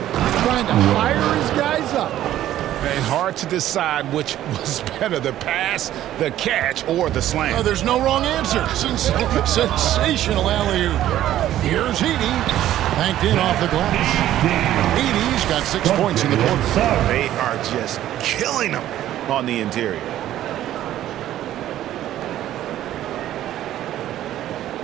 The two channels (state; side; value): quieter; left; 12.8 dB